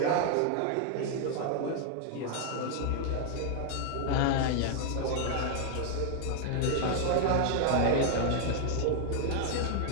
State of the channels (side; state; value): both; different; correlation 0.00